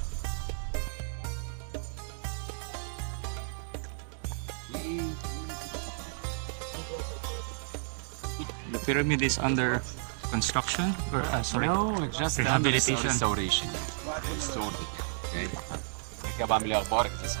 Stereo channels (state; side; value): silent; left; digital silence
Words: The pyramid is under construction or sorry. No, it's just Rehabilitation. restoration. They restored it. Okay. بعد كده بعمل ايه اخبارك زي